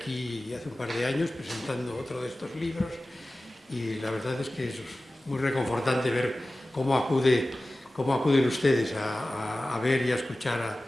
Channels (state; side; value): normal; both; correlation 0.96